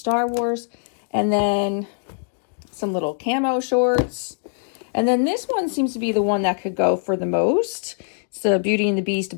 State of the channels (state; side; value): silent; right; digital silence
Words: Wars. And then some little camo shorts. And then this one seems to be the one that could go for the most. It's the Beauty and the Beast